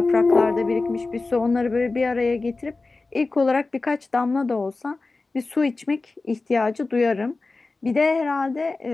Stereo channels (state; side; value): quieter; right; 3.6 dB